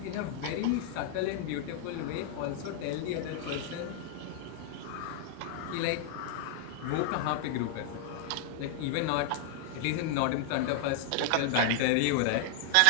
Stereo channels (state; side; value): different; both; correlation 0.00